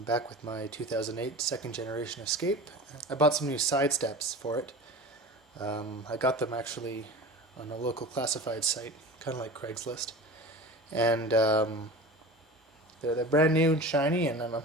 back with my 2008 second generation Escape. I bought some new side steps for it. I got them actually on a local classified site, kind of like Craigslist. And they're brand new and shiny, and I'm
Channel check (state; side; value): normal; both; correlation 0.34